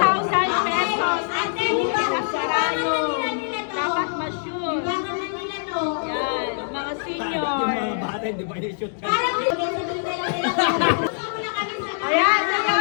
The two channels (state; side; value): silent; right; digital silence